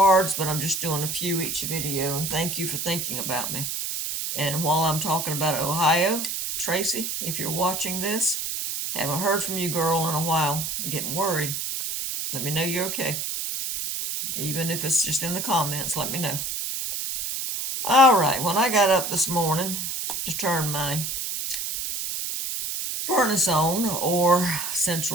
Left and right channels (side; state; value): right; noise; hiss, 3 dB below the sound